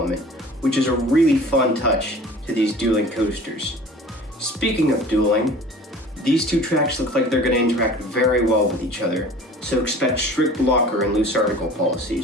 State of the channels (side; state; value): both; normal; correlation 0.44